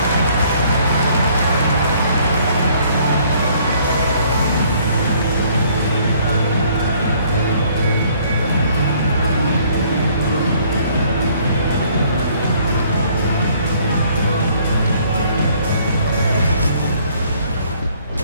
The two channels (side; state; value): both; inverted; correlation -0.61